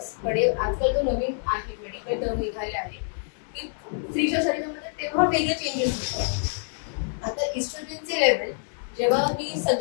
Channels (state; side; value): silent; right; digital silence